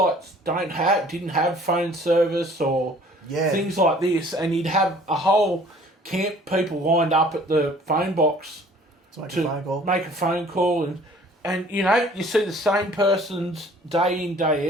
didn't have phone service or things like this, and you'd have a whole camp people lined up at the phone box To make a phone call. make a phone call, and you know, you see the same persons day in,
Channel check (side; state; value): both; normal; correlation 0.53